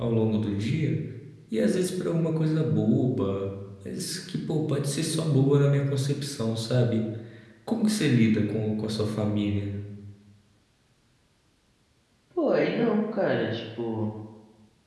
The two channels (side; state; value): both; identical; correlation 1.00